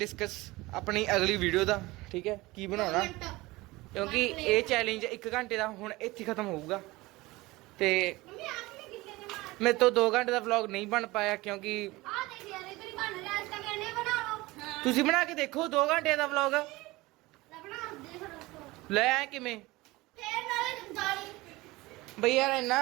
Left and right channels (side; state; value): left; quieter; 20.7 dB